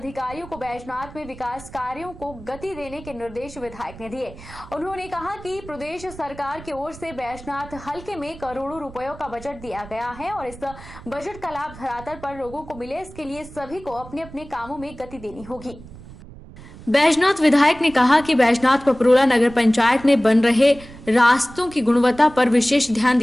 को बैजनाथ में विकास कार्यों को गति देने के निर्देश विधायक ने दिए। उन्होंने कहा कि प्रदेश सरकार की ओर से बैजनाथ हलके में करोड़ों रुपयों का बजट दिया गया है और इस बजट का लाभ धरातल पर लोगों को मिले, इसके लिए सभी को अपने अपने कामों में गति देनी होगी। बैजनाथ विधायक ने कहा कि बैजनाथ पपरोला नगर पंचायत में बन रहे रास्तों की गुणवत्ता पर विशेष ध्यान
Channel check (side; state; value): right; noise; rumble, 17 dB below the sound